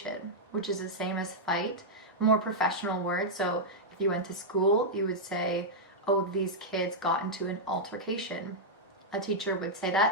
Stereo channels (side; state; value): both; normal; correlation -0.06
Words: which is the same as fight, more professional word. So if you went to school, you would say, oh, these kids got into an altercation. A teacher would say